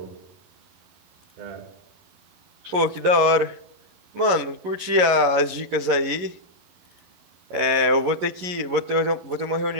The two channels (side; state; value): left; late; 11 ms